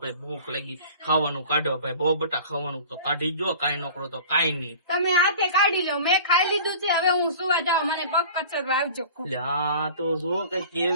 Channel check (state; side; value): inverted; both; correlation -0.42